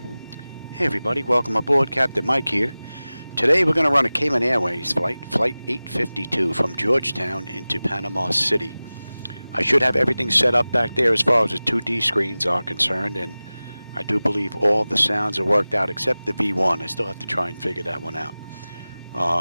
Hey everybody, welcome aboard. Captain Mike here. Today we're going to run a Cayman Airways flight, Flight 852 from Georgetown into Panama City. I should have everything set up back there as far as the 2D screens are concerned, and I do believe all the sounds are worked out except the V1. I still have to try and figure that one out.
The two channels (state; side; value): inverted; both; correlation -0.98